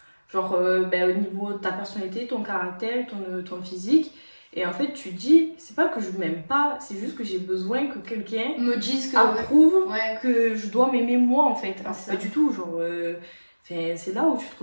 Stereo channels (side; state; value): both; inverted; correlation -1.00